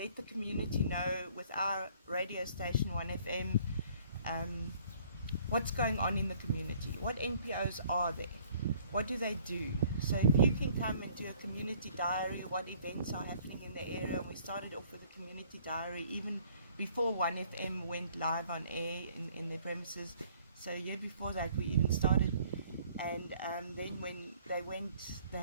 the community know with our radio station 1FM what's going on in the community, what NPOs are there, what do they do. So if you can come and do a community diary, what events are happening in the area. We started off with a community diary even before 1FM went live on air in their premises. So a year before that we even started. And then when they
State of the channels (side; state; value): both; inverted; correlation -0.58